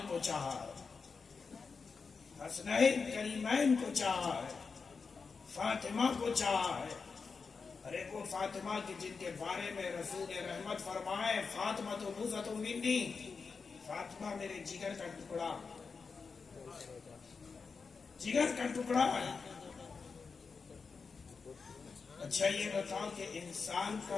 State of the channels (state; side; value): quieter; right; 5.0 dB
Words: کو چاہا ہے, حسنین کریمین کو چاہا ہے, فاطمہ کو چاہا ہے. ارے وہ فاطمہ کی جن کے بارے میں رسول رحمت فرمائے فاطمہ تو بوزت منی, فاطمہ میرے جگر کا ٹکڑا, جگر کا ٹکڑا ہے. اچھا یہ بتاؤ کہ انسان